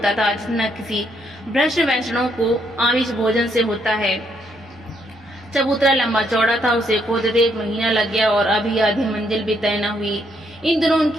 था जितना किसी भ्रष्ट वैष्णव को आमिष भोजन से होता है। चबूतरा लंबा चौड़ा था। उसे खोदते 1 महीना लग गया और अभी आधी मंजिल भी तय न हुई। इन दिनों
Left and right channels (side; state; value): both; normal; correlation 0.74